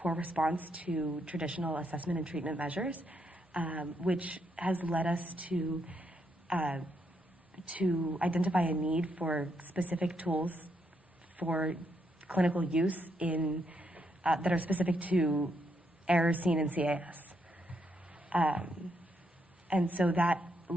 response to traditional assessment and treatment measures, which has led us to identify a need for specific tools for clinical use in that are specific to errors seen in CAS. And so that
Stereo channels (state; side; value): normal; both; correlation 0.77